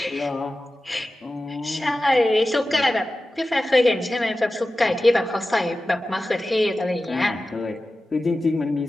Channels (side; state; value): both; normal; correlation 0.95